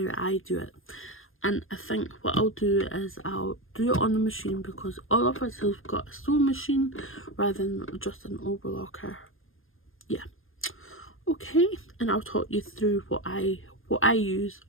I do it. And I think what I'll do is I'll do it on the machine, because all of us have got a sewing machine rather than just an overlocker. Yeah. Okay, and I'll talk you through what I use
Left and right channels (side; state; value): right; late; 0.59 ms